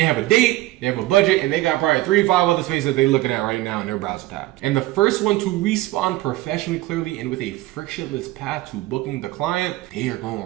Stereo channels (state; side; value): quieter; left; 17.7 dB